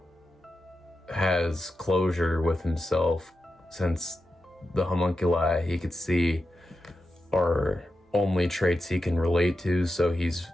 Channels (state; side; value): normal; both; correlation 0.90